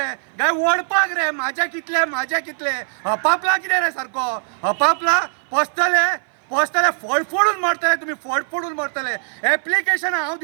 काय ओडपाक रे. म्हाजे कितले, म्हाजे कितले. हपापला कितें रे सारको, हपापला. पोसतले, पोसतले, फोडून मरतले तुमी, फोडून मरतले. एप्लिकेशन हांव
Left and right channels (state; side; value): silent; left; 57 dB below the other